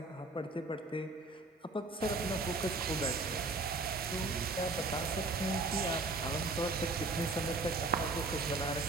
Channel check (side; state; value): left; quieter; 3.3 dB